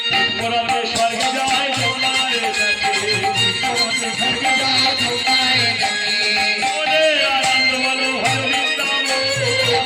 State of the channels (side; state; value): both; identical; correlation 1.00